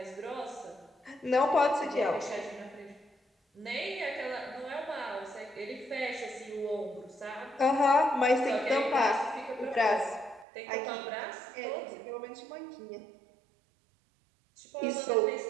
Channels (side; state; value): left; drops out; at 10.5 s